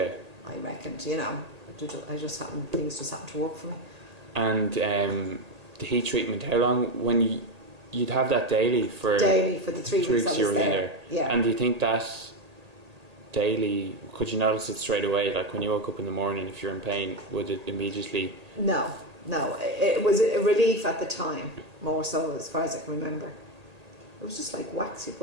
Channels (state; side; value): late; left; 1.8 ms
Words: I reckoned, you know, things just happened to work for me. And the heat treatment, how long, when you'd have that daily for the 3 weeks I was you were in there. Yeah. And do you think that daily, could you notice it straight away? Like when you woke up in the morning, if you're in pain, would it immediately? No. It was a relief at the time, more so as far as I can remember. It was just like wax. You